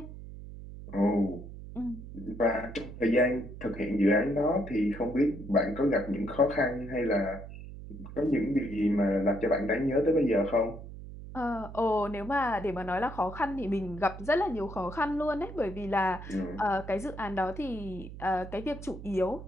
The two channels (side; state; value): right; noise; hum, 12 dB below the sound